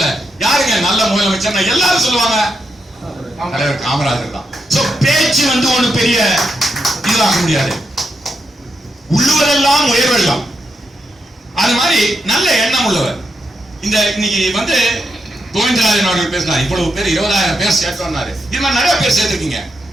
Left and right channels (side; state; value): both; normal; correlation 0.83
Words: யாருங்க நல்ல முதலமைச்சர் எல்லாரும் சொல்லுவாங்க தலைவர் காமராஜர் தான். பேச்சு ஒண்ணு பெரிய இதுவாக முடியாது, உள்ளுவதெல்லாம் உயர்வெல்லாம். அது மாதிரி நல்ல எண்ணம் உள்ளவர். இந்த இன்னைக்கு கோவிந்தராஜன் அவர்கள் பேசினார், இவ்வளவு பேர் 20,000 பேர் சேர்த்தோம்னாரு. இது மாதிரி நிறைய பேர் சேர்த்திருக்கீங்க,